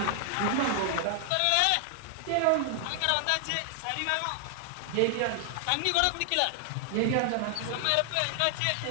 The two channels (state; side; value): different; both; correlation 0.00